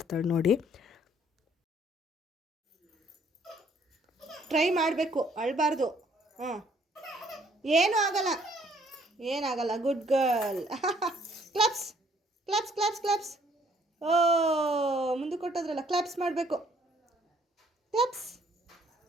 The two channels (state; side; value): normal; both; correlation 0.63